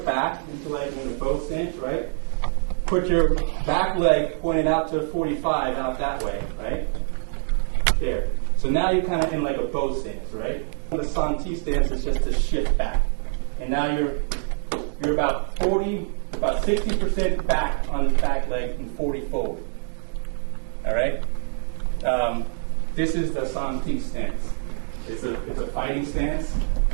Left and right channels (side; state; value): left; silent; digital silence